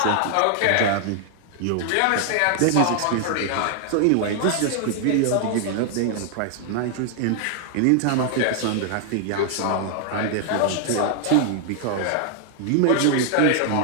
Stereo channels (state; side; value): different; both; correlation 0.00